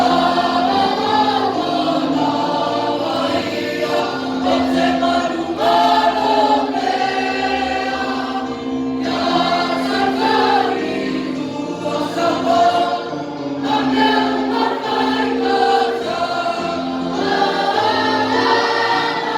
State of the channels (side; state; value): both; identical; correlation 1.00